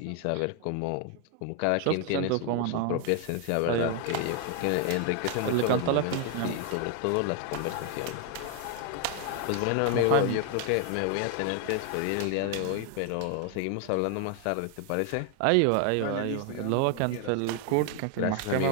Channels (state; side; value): different; both; correlation 0.00